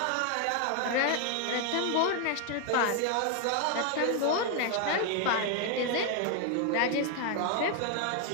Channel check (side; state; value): both; different; correlation 0.00